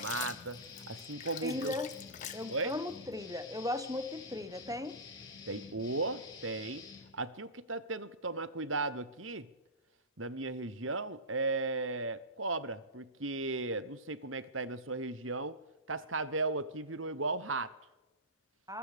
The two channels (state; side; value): normal; both; correlation -0.17